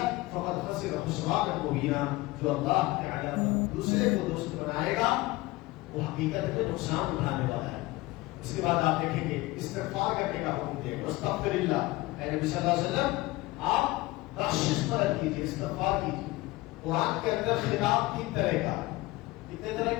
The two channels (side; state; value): right; quieter; 20.0 dB